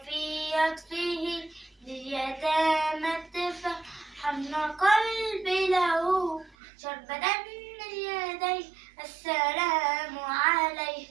عطفه لليتامى الدفا حن قلبي له شربة من يديه السلام عليه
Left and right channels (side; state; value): left; drops out; at 6.6 s